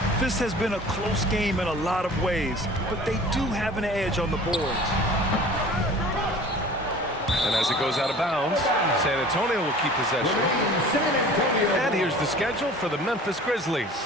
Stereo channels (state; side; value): normal; both; correlation 0.44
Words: This has been a close game in a lot of ways, but they do have an edge on the boards. And as it goes out of bounds, San Antonio will keep possession. And here's the schedule for the Memphis